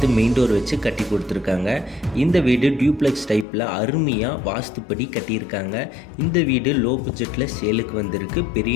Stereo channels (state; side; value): drops out; right; at 3.5 s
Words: மெயின் டோர் வச்சு கட்டி கொடுத்துருக்காங்க. இந்த வீடு டியூப்ளெக்ஸ் டைப்பில் அருமையாக வாஸ்துப்படி கட்டியிருக்காங்க. இந்த வீடு லோ பட்ஜெட்டில் சேலுக்கு வந்திருக்கு.